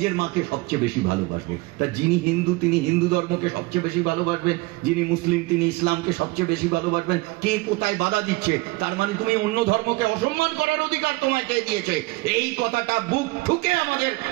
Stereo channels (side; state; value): left; quieter; 22.8 dB